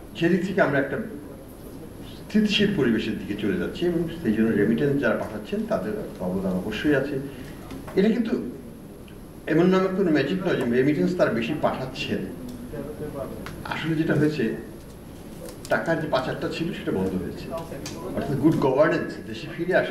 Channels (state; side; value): identical; both; correlation 1.00